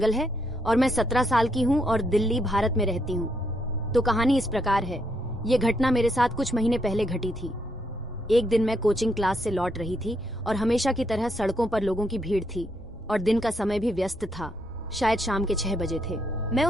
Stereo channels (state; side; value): normal; both; correlation 0.76